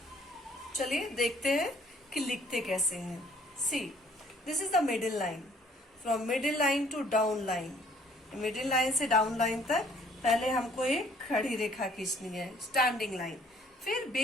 चलिए देखते हैं कि लिखते कैसे हैं. See, this is the middle line. From middle line to down line. Middle line से डाउन लाइन तक पहले हमको एक खड़ी रेखा खींचनी है, स्टैंडिंग लाइन. फिर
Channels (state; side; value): normal; both; correlation 0.60